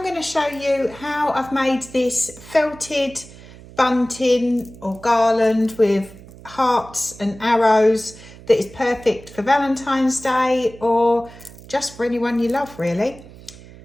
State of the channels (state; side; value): noise; right; hum, 19 dB below the sound